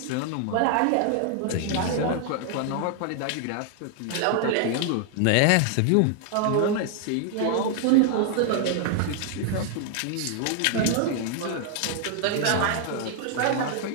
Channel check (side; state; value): both; different; correlation 0.00